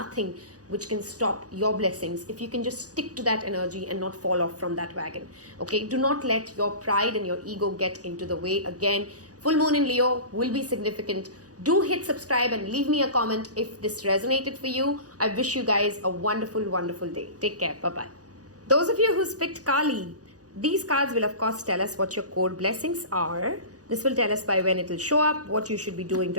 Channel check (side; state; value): left; late; 0.67 ms